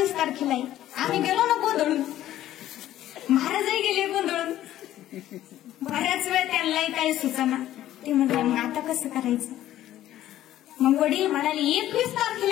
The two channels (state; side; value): quieter; right; 13.2 dB